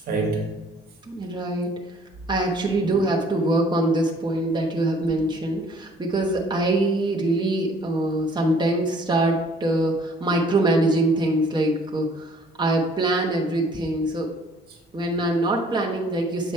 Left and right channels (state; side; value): normal; both; correlation 0.57